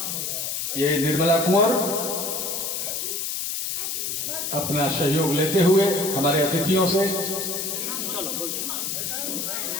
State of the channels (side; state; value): left; noise; hiss, 2 dB below the sound